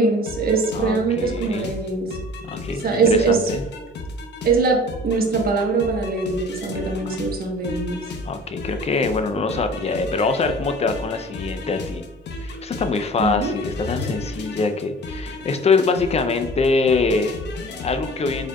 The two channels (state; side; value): normal; both; correlation 0.44